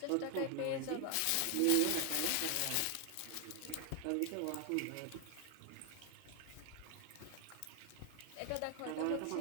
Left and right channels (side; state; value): both; different; correlation 0.01